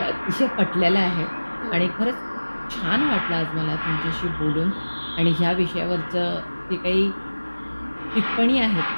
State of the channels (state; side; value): inverted; both; correlation -1.00